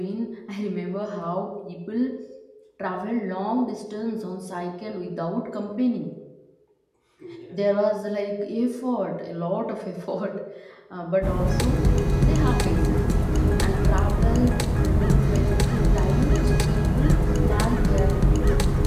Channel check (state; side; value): identical; both; correlation 1.00